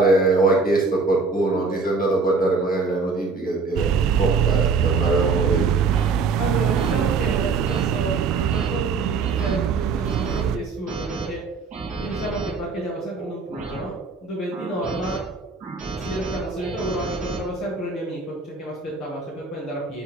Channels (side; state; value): left; quieter; 4.5 dB